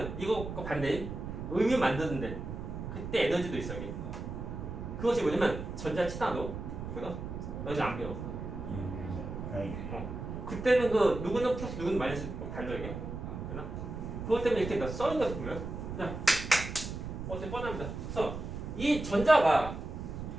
이거 반대인 음유 만드는데 그때 에너지도 있어 이게. 그것이 뭐냐면 전자 치나도 그거 너희 안 배워. 다행이네. 그때는 그 누구는 플러스 누구는 마이너스 달려 이게. 되나? 그것 때문에 이렇게 써인 것 같은 거예요. 그냥 어떻게 뻔합니다. 그래서 이 전자가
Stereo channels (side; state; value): right; noise; rumble, 7 dB below the sound